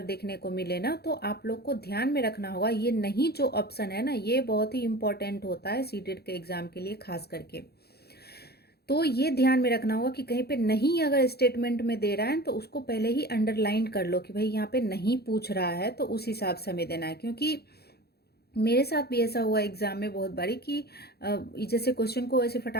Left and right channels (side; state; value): right; late; 0.46 ms